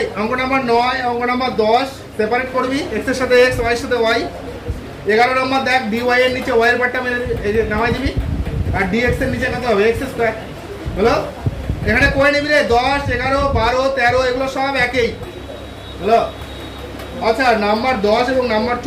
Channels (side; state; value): both; identical; correlation 1.00